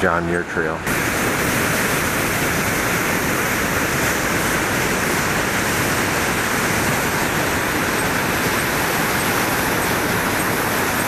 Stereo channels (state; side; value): identical; both; correlation 1.00